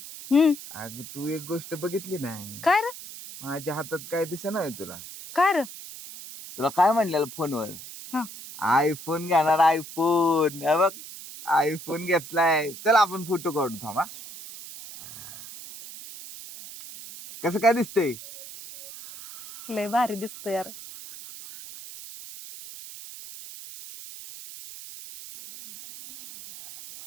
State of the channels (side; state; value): right; noise; hiss, 13 dB below the sound